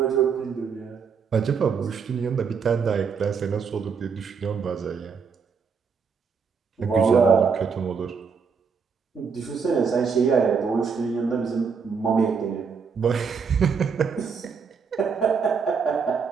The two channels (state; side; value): quieter; left; 5.9 dB